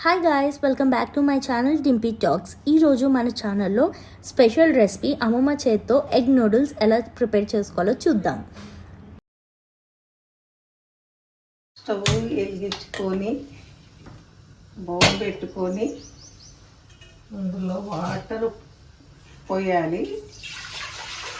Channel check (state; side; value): identical; both; correlation 1.00